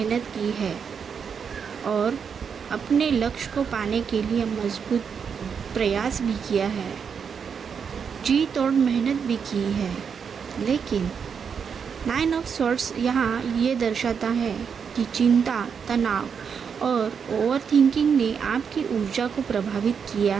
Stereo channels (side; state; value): left; quieter; 6.7 dB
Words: की है और अपने लक्ष्य को पाने के लिए मजबूत प्रयास भी किया है, जी तोड़ मेहनत भी की है, लेकिन 9 ऑफ स्वॉर्ड्स यहाँ ये दर्शाता है कि चिंता, तनाव और ओवर थिंकिंग ने आपकी ऊर्जा को प्रभावित किया